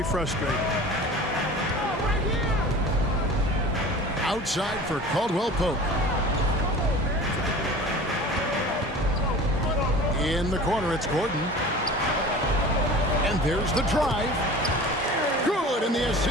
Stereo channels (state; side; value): normal; both; correlation 0.39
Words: frustrating. Outside for Caldwell Pope. In the corner, it's Gordon. And there's the drive. Good, and the